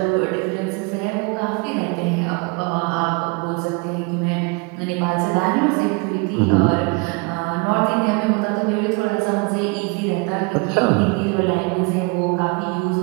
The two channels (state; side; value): quieter; left; 29.7 dB